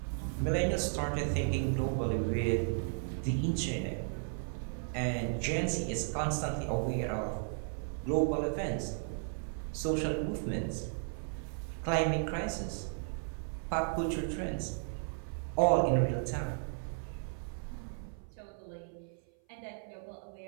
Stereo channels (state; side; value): silent; left; 55 dB below the other